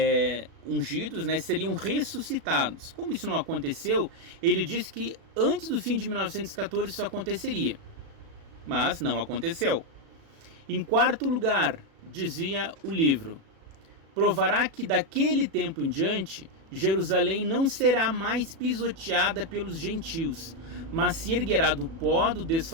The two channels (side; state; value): left; late; 36 ms